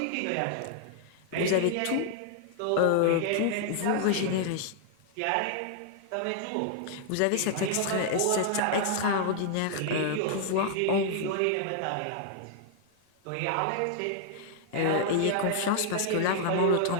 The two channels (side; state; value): both; different; correlation 0.00